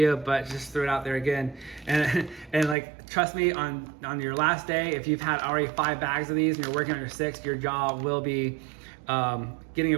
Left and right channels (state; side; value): drops out; left; at 2.8 s